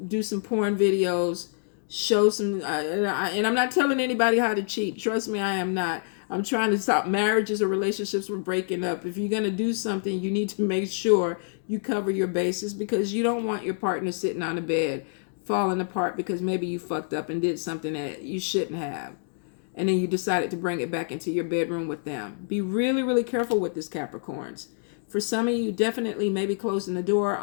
do some porn videos, show some, and I'm not telling anybody how to cheat. Trust me, I am not. I'm trying to stop marriages or relationships from breaking up. If you're going to do something, you need to make sure you cover your bases, because you don't want your partner sitting on the bed falling apart because maybe you fucked up and did something that you shouldn't have. And then you decided to bring it back into your bedroom with them. Be really, really careful with this, Capricorns. For some of you, definitely maybe closing the door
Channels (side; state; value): right; silent; digital silence